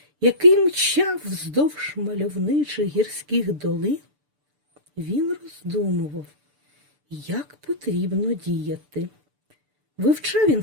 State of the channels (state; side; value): late; left; 6.8 ms